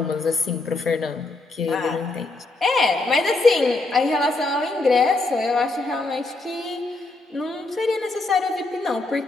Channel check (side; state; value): right; quieter; 3.2 dB